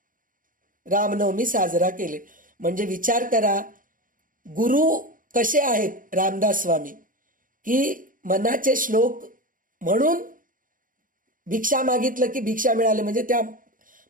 रामनवमी साजरा केले. म्हणजे विचार करा, गुरु कसे आहेत रामदास स्वामी, की मनाचे श्लोक म्हणून भिक्षा मागितलं की भिक्षा मिळाली. म्हणजे त्या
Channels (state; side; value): late; left; 0.39 ms